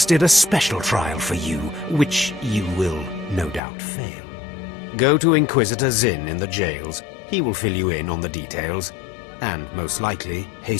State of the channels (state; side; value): drops out; right; at 3.6 s